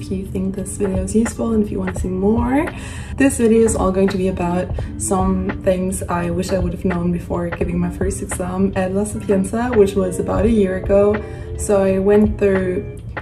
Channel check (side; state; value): both; identical; correlation 1.00